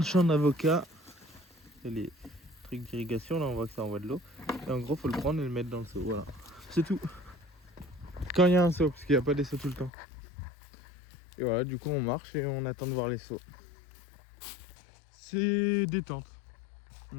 champ d'avocats, il y a les trucs d'irrigation. Là, on voit que ça envoie de l'eau. Et en gros, faut le prendre et le mettre dans le seau. Voilà. C'est tout. Quand il y a un seau, parce qu'il n'y a pas des seaux tout le temps. Et voilà, du coup, on marche et on attend de voir les seaux. C'est détente.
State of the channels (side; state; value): right; drops out; at 9.9 s